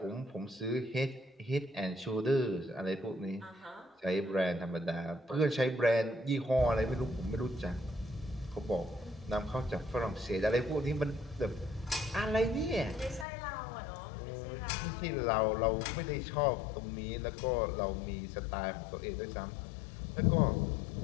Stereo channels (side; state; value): right; drops out; at 13.2 s